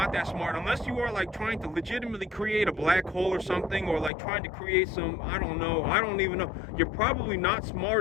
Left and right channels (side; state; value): right; drops out; at 4.1 s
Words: that smart. Unless you are, like, trying to legitimately create a black hole or something, or like trying to create some, I don't even know. You're probably not